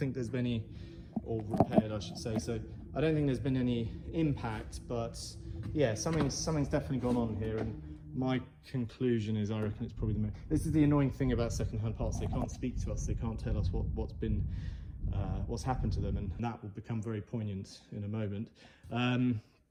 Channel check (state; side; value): identical; both; correlation 1.00